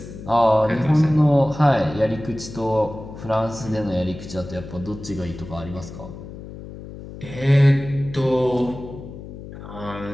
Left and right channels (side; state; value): left; noise; hum, 13 dB below the sound